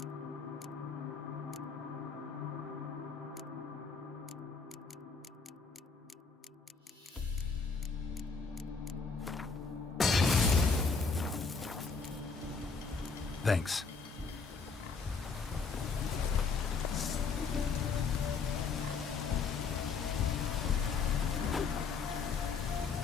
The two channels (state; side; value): quieter; right; 4.9 dB